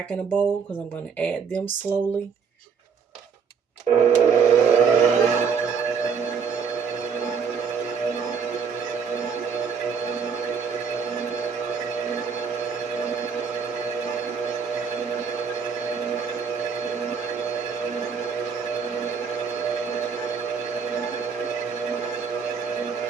in a bowl because I'm going to add them slowly.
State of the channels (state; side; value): quieter; left; 6.2 dB